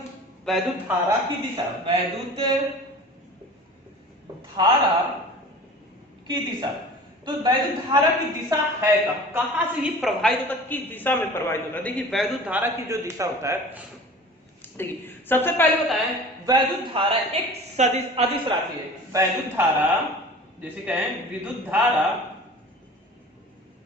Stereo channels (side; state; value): both; normal; correlation 0.41